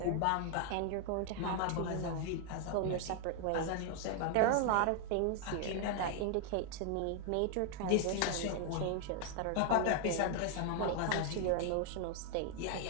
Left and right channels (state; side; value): different; both; correlation 0.00